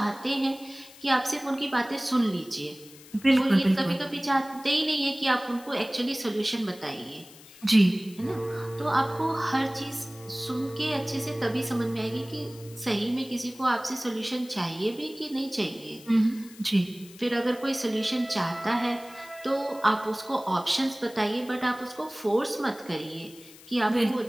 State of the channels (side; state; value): left; noise; hiss, 21 dB below the sound